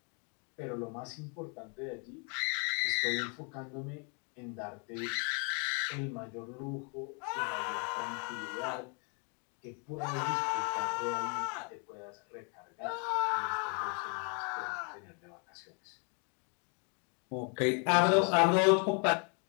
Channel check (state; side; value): quieter; right; 37.8 dB